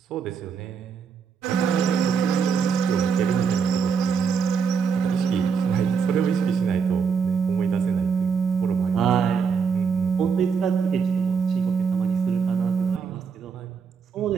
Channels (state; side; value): quieter; left; 6.1 dB